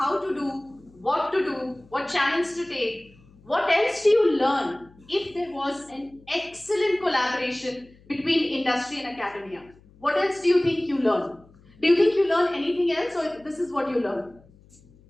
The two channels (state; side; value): noise; left; hum, 27 dB below the sound